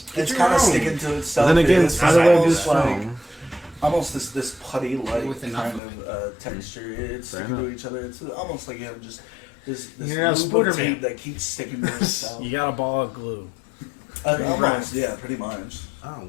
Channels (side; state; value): right; drops out; at 5.8 s